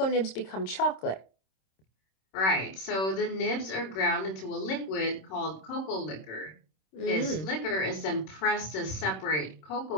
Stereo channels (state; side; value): late; right; 26 ms